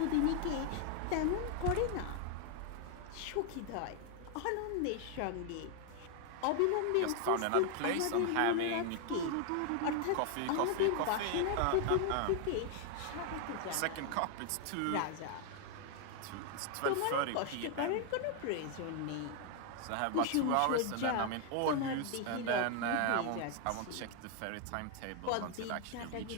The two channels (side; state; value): both; different; correlation 0.00